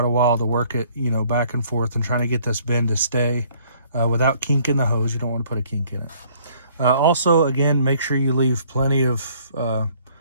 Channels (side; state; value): both; inverted; correlation -0.61